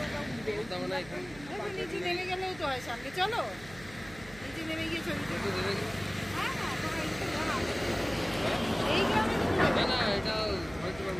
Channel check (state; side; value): noise; right; hum, 18 dB below the sound